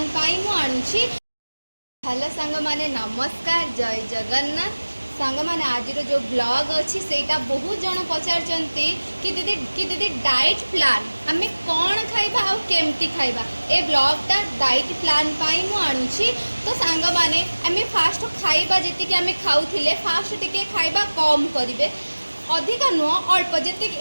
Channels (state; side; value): inverted; both; correlation -1.00